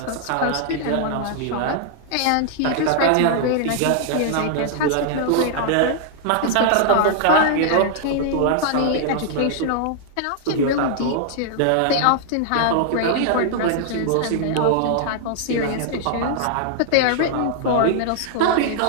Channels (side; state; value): both; different; correlation -0.01